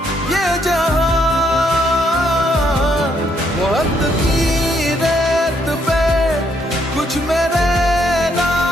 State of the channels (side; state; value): both; normal; correlation 0.73